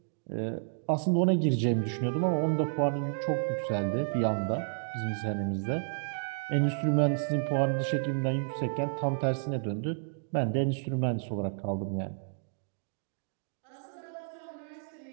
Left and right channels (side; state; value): left; silent; digital silence